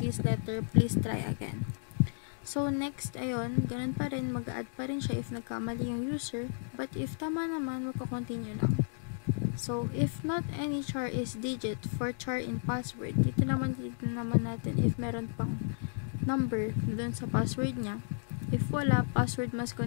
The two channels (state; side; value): silent; right; digital silence